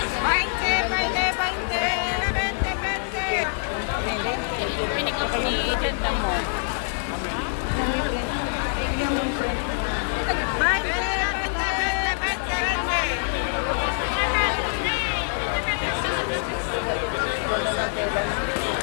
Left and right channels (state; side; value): silent; right; digital silence